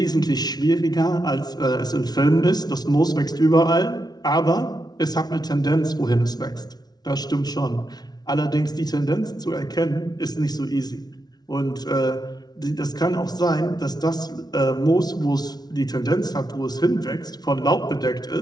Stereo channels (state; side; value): late; right; 0.19 ms